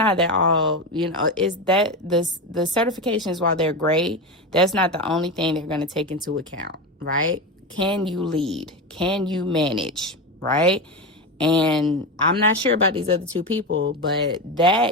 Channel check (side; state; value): both; normal; correlation 0.18